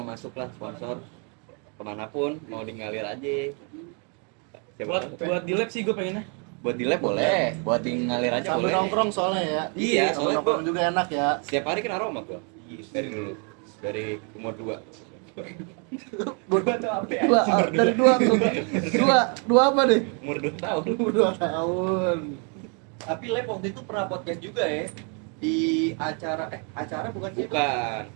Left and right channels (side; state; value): left; quieter; 38.0 dB